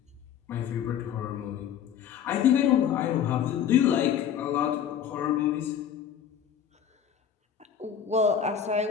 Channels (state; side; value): quieter; right; 8.7 dB